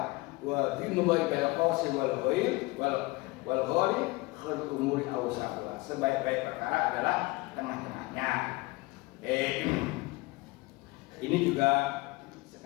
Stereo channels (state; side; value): quieter; right; 23.1 dB